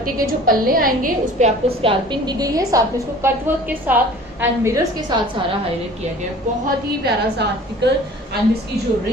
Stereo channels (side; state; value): both; normal; correlation 0.46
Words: के जो पल्ले आएंगे उस पर आपको स्कैल्पिंग दी गई है, साथ में इसको कट वर्क के साथ एंड मिरर्स के साथ सारा हाईलाइट किया गया। बहुत ही प्यारा सा आर्टिकल एंड इसकी जो